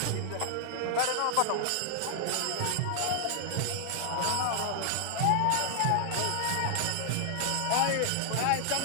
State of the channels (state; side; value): different; both; correlation 0.00